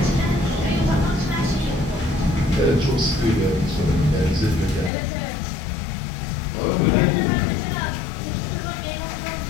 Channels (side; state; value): right; drops out; at 4.9 s